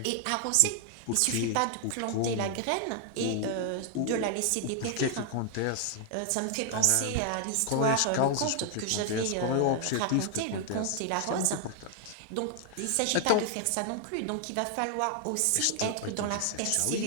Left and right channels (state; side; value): different; both; correlation 0.00